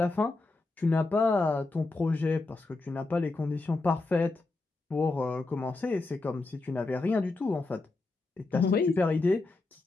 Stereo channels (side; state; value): right; quieter; 3.3 dB